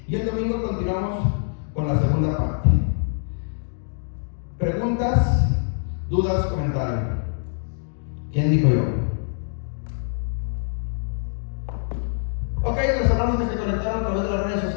Y el domingo continuamos con la segunda parte. Preguntas, dudas, comentarios. ¿Quién dijo yo? Ok, los hermanos que se conectaron a través de las redes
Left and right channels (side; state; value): right; silent; digital silence